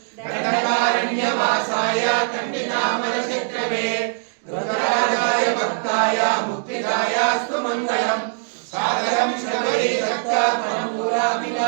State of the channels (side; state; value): left; silent; digital silence